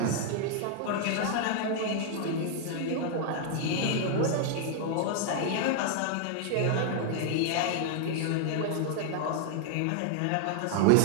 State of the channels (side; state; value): both; different; correlation 0.00